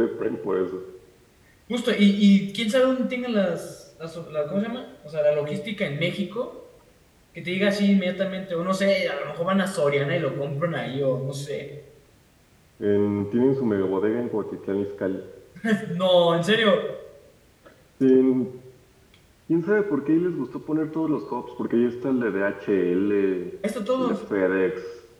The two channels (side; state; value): both; identical; correlation 1.00